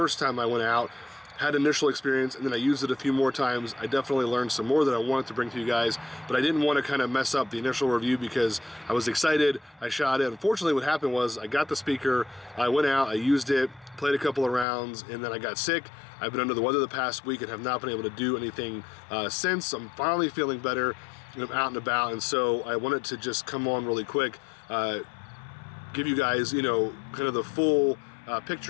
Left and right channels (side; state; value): right; drops out; at 14.7 s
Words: time I went out. Had initial experience, and then I used it a few more times. I definitely learned some more that I wanted to bring to you guys, but I didn't want to kind of mess up the initial review because I was excited. I shot it. Unfortunately, what happened was I got the speaker, I went out, I used it, played a couple of rounds, and then I got sick. I've been under the weather the past week and have not been able to do anything since. I'm finally feeling better, and I'm out and about, and so I wanted to just come on really quick, give you guys, kind of the full